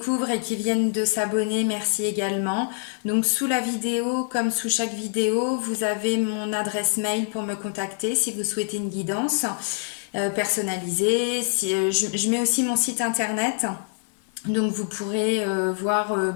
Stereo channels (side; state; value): right; silent; 59 dB below the other